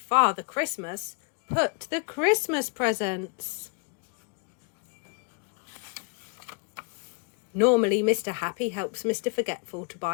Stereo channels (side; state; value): right; quieter; 36.3 dB